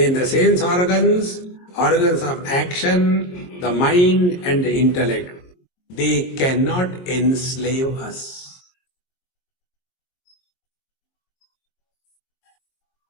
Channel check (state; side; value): late; right; 22 ms